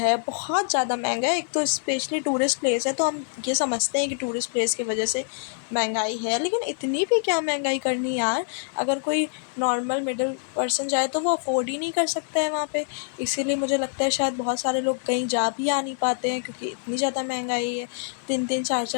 बहुत ज़्यादा महंगा है। एक तो स्पेशली टूरिस्ट प्लेस है, तो हम ये समझते हैं कि टूरिस्ट प्लेस की वजह से महंगाई है, लेकिन इतनी भी क्या महंगाई करनी यार। अगर कोई नॉर्मल मिडिल पर्सन जाए तो वो अफोर्ड ही नहीं कर सकता है वहाँ पे। इसीलिए मुझे लगता है शायद बहुत सारे लोग कहीं जा भी आ नहीं पाते हैं, क्योंकि इतनी ज़्यादा महंगाई है। 3-3,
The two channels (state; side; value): silent; right; digital silence